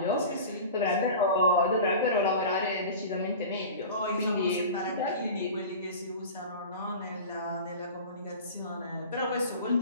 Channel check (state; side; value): inverted; both; correlation -0.35